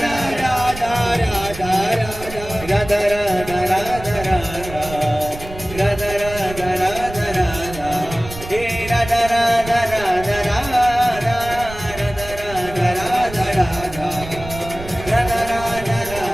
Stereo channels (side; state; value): right; noise; rumble, 13 dB below the sound